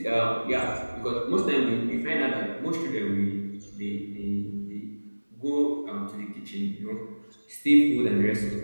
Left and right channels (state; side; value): inverted; both; correlation -1.00